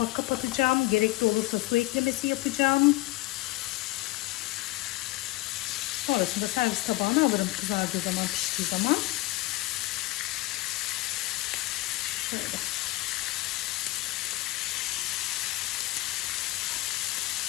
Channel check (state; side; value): quieter; right; 19.0 dB